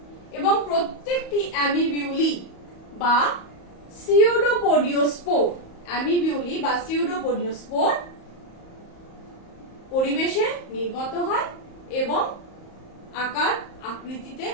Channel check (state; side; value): late; right; 34 ms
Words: এবং প্রত্যেকটি অ্যামিবিউলি বা সিউডোপোডিওস্পোর পরিবেশে নির্গত হয় এবং আকার আকৃতিতে